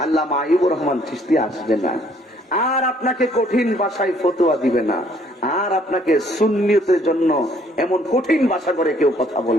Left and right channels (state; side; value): normal; both; correlation 0.63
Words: আল্লামা আইয়ুবুর রহমান চিশতি আসবে না, আর আপনাকে কঠিন ভাষায় ফতোয়া দিবে না, আর আপনাকে সুন্নিয়তের জন্য এমন কঠিন ভাষা করে কেউ কথা